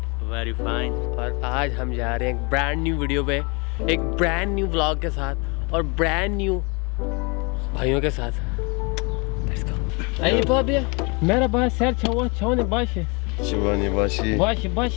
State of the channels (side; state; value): right; quieter; 30.7 dB